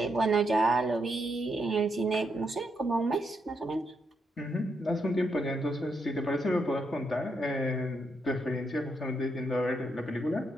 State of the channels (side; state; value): both; normal; correlation 0.79